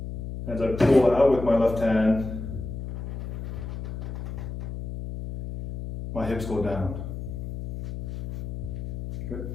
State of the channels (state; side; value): noise; left; hum, 6 dB below the sound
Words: As I pull out with my left hand, my hips go down.